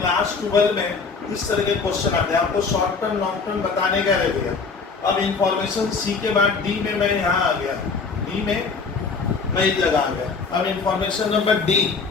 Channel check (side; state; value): right; quieter; 4.8 dB